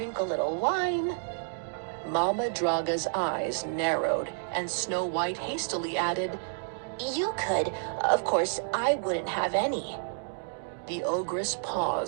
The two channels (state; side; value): silent; left; digital silence